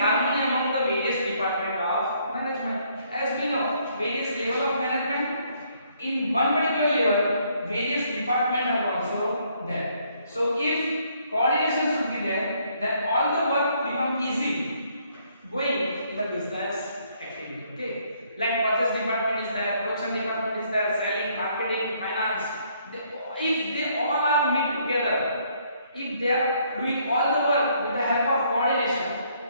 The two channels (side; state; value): both; inverted; correlation -0.68